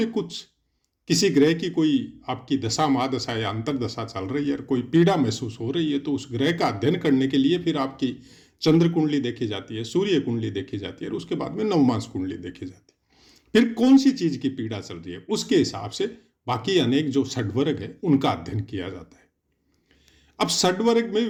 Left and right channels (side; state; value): both; identical; correlation 1.00